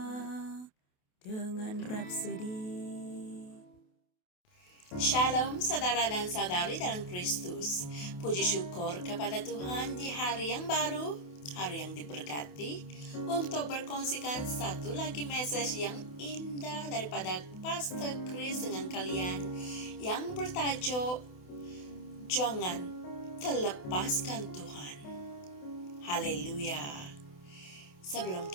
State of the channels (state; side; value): late; right; 28 ms